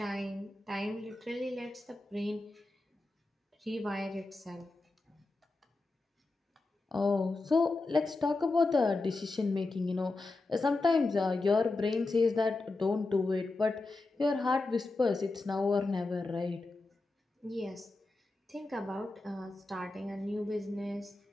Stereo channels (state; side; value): quieter; right; 3.2 dB